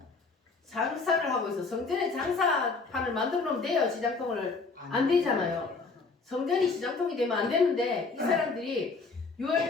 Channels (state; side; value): quieter; right; 4.2 dB